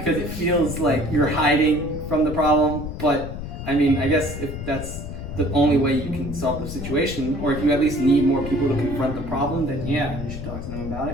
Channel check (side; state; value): left; noise; rumble, 8 dB below the sound